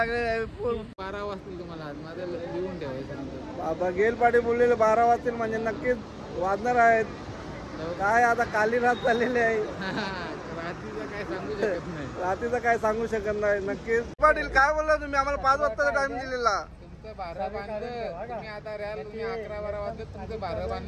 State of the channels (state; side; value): identical; both; correlation 1.00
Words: 12 वाजतील तुम्हाला आज माझं लिहून ठेवायचं. बाबा गेल पाटील बोललेले 12 वाजतील म्हणजे नक्कीच वाजणार आहेत. काय आता काली रात चाललेली आहे. रात्रीचं काय सांगू शकत नाही. रात्रीचं काय सांगू शकत नाही. नक्कीच पाटील काय बोलला तुम्ही आम्हाला 5 वाजताचा टाइम दिलेला. तुमचं 12 बांधलं तुम्ही आता राहाल. तुम्ही 11-12 वाजता तुमचं 12